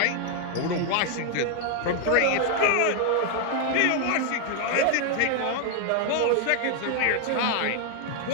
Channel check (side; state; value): both; different; correlation 0.00